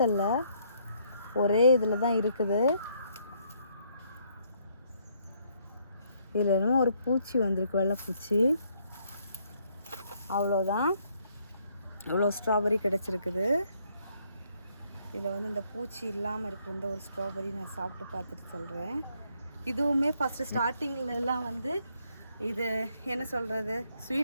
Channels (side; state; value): both; inverted; correlation -0.69